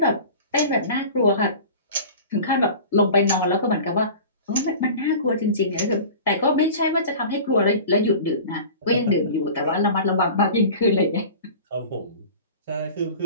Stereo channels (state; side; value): inverted; both; correlation -0.39